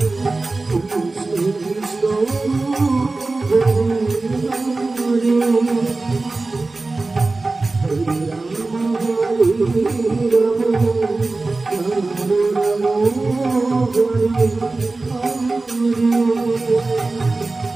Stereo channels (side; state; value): left; quieter; 3.4 dB